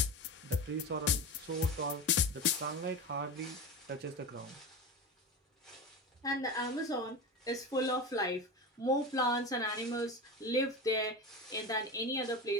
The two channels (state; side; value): normal; both; correlation 0.25